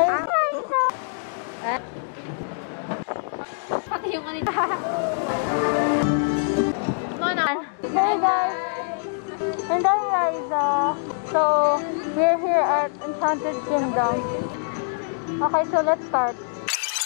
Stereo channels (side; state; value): right; silent; digital silence